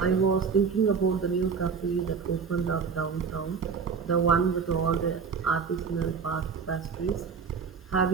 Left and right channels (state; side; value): quieter; left; 5.8 dB